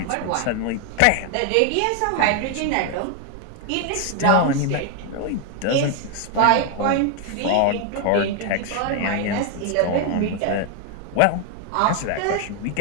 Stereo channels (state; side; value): different; both; correlation 0.00